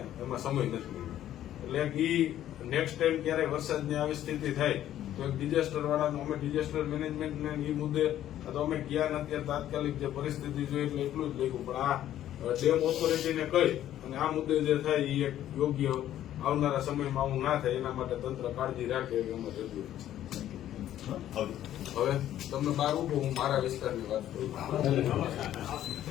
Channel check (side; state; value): right; quieter; 12.1 dB